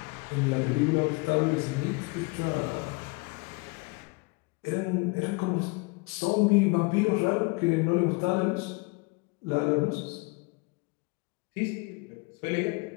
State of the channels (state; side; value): quieter; right; 28.0 dB